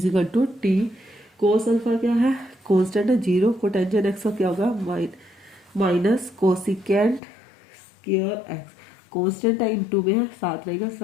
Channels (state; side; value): drops out; right; at 7.2 s